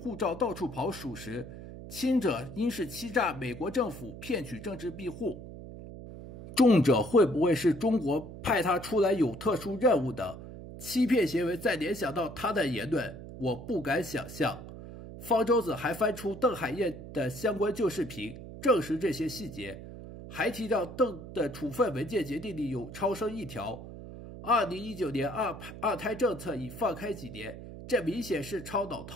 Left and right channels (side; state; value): right; noise; hum, 12 dB below the sound